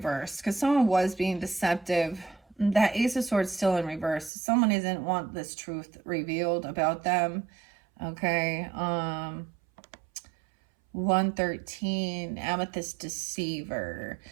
because someone was being deceptive. That Ace of Swords still in reverse. Someone doesn't want this truth revealed about them. Okay. 113, Amethyst Deceiver.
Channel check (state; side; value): drops out; left; at 4.3 s